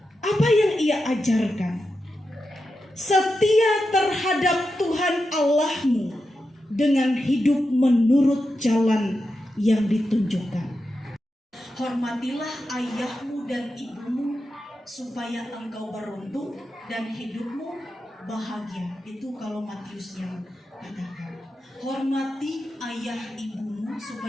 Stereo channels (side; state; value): both; normal; correlation 0.89